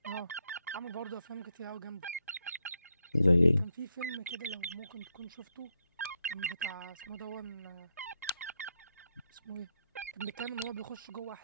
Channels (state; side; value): inverted; both; correlation -0.80